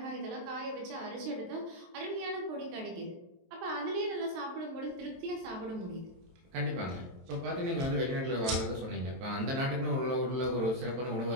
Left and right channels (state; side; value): late; left; 23 ms